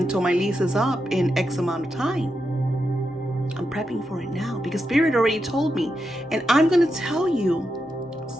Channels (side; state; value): both; normal; correlation 0.86